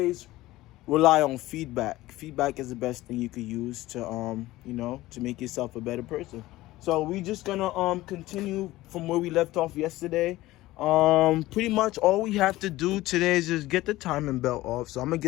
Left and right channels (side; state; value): right; quieter; 17.3 dB